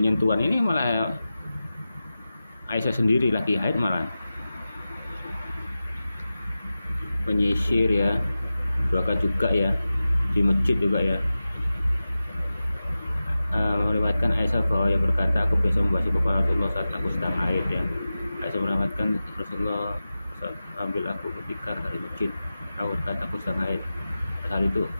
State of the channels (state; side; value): inverted; both; correlation -0.94